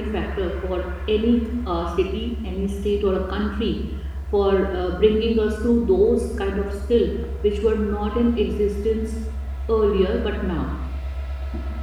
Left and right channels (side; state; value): both; identical; correlation 1.00